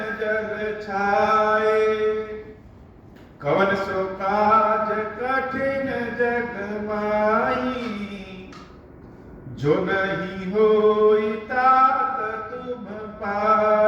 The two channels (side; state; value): both; identical; correlation 1.00